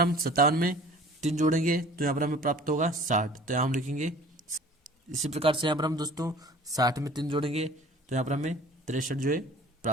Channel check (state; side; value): normal; both; correlation 0.47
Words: हम 57 में 3 जोड़ेंगे, तो यहाँ पर हमें प्राप्त होगा 60, तो यहाँ हम लिखेंगे। इसी प्रकार से यहाँ पर हम दोस्तों 60 में 3 जोड़ेंगे, तो यहाँ पर हमें 63 जो है